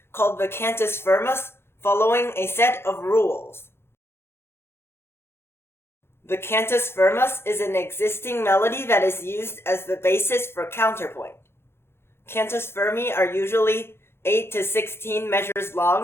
called the cantus firmus, following a set of rules. The cantus firmus is an existing melody that is used as the basis for counterpoint. Cantus firmi are usually 8 to 16 measures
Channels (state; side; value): late; right; 0.12 ms